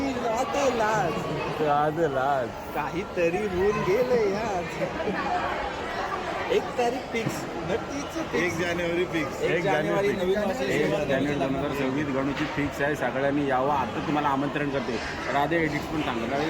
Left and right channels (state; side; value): identical; both; correlation 1.00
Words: लाज काहीतरी होऊन गेलंय आज. 1 तारीख फिक्स. 1 जानेवारी फिक्स. 1 जानेवारी नवीन वर्ष 1 जानेवारी 2026 गणूची फिक्स आहे. सगळ्यांनी यावं. आता तुम्हाला आमंत्रण करते. राधे एडिट्स पण सांगा. राधे